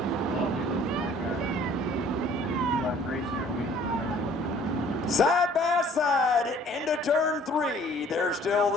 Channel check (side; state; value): both; normal; correlation 0.54